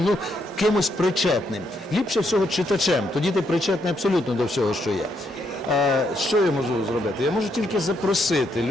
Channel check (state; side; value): normal; both; correlation 0.76